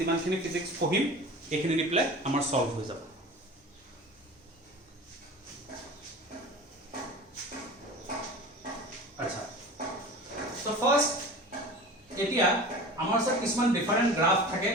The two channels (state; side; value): normal; both; correlation 0.36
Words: ফিজিক্স পঢ়িম এইখিনি দিলে আমাৰ সলভ হৈ যাব আচ্ছা সো ফাৰ্স্ট এতিয়া আমাৰ সব কিছুমান ডিফারেন্ট গ্রাফ থাকে